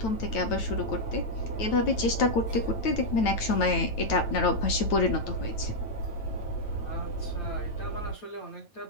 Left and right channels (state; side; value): late; right; 9.0 ms